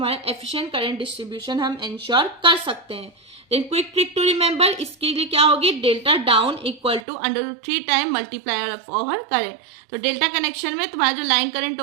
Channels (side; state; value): left; drops out; at 7.0 s